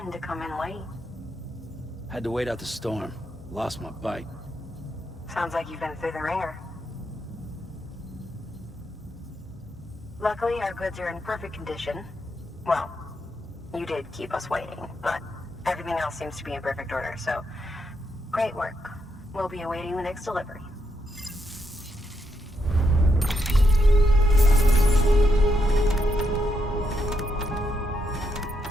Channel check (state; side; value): normal; both; correlation 0.80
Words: to come in late. Had to wait out the storm. Lost my bike. Sounds like you've been through the ringer. Luckily, our goods are in perfect condition. Well, you did keep us waiting, but everything else seems to be in perfect order, so great work. We'll be awaiting the next delivery.